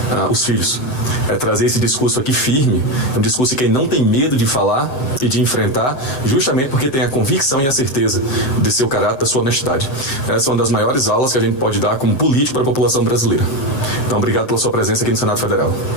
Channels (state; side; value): late; right; 7.6 ms